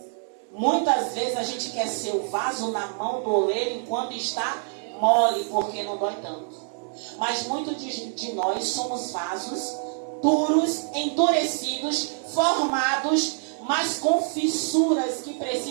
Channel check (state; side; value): silent; left; 57 dB below the other